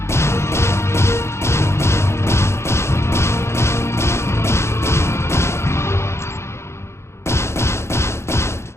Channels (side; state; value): right; late; 0.13 ms